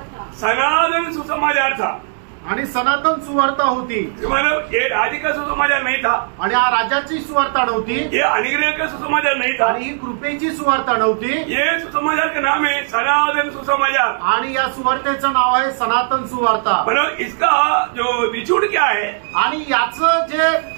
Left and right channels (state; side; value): silent; left; digital silence